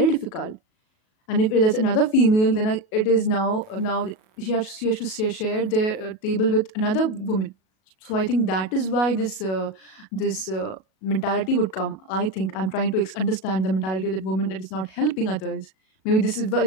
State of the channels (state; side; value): late; right; 37 ms